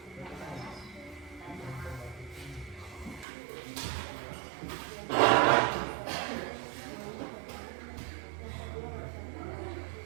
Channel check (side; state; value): left; drops out; at 3.2 s